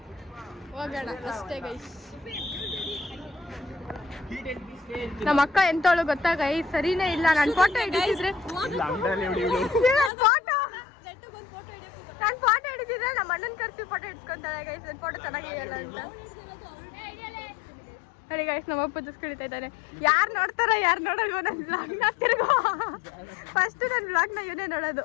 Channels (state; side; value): drops out; right; at 10.1 s